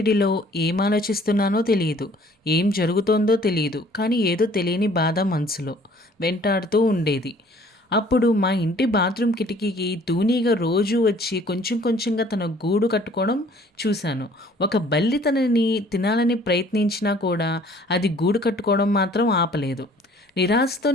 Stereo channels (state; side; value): normal; both; correlation 0.55